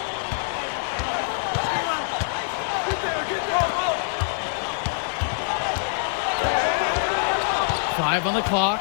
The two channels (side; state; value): right; silent; 55 dB below the other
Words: Five on the clock.